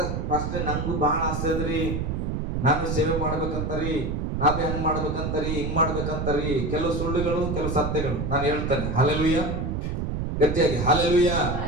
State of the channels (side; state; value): right; noise; rumble, 2 dB below the sound